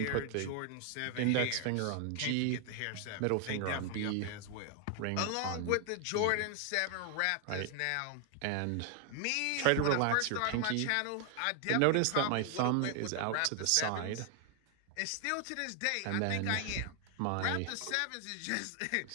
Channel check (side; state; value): both; different; correlation 0.00